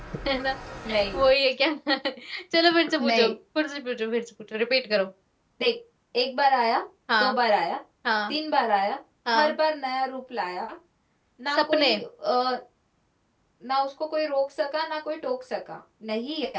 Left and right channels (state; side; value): identical; both; correlation 1.00